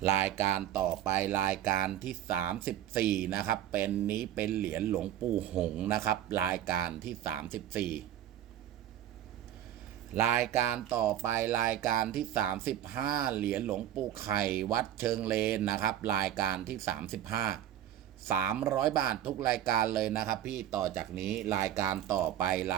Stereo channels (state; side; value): quieter; left; 11.6 dB